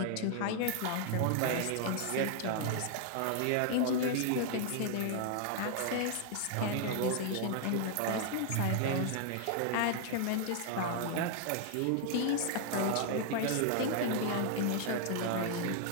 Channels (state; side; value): different; both; correlation 0.00